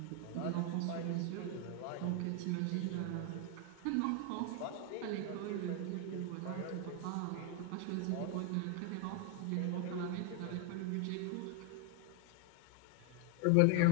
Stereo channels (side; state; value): both; different; correlation 0.01